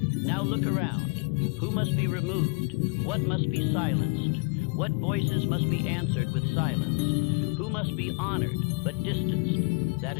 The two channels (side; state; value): right; quieter; 31.2 dB